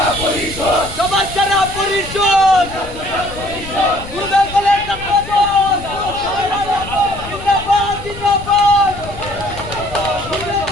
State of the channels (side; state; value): left; noise; rumble, 13 dB below the sound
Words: পরিষদ, সবার সেরা পরিষদ। গুরুদেব কলেজ ছাত্রদল জিন্দাবাদ, জিন্দাবাদ। গুরুদেব